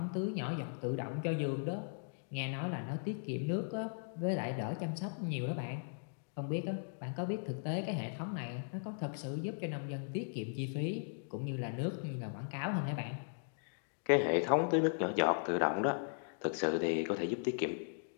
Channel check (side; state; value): right; silent; digital silence